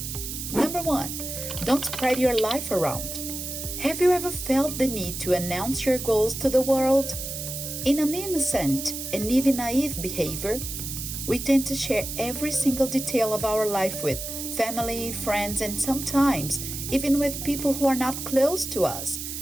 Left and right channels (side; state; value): right; noise; hiss, 6 dB below the sound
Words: Number 1, don't spread your life around. Have you ever felt the need to announce your goals to the world? In an innocent and even naive behavior, we tend to share every single detail of our life with family, friends, and sometimes even with people who are not close to us,